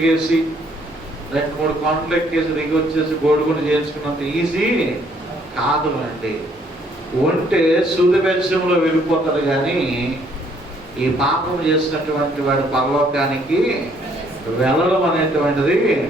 2-3 కొండలు ఎక్కేసి దిగి వచ్చేసి గోడుగుండు చేయించుకున్నంత ఈజీ కాదు అండి. ఉంటే సూదిబెచ్చంలో వెళ్ళిపోతారు, కానీ ఈ పాపం చేసినటువంటి వాడి పరలోకానికి వెళ్ళడం అనేటువంటిది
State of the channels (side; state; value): both; normal; correlation 0.65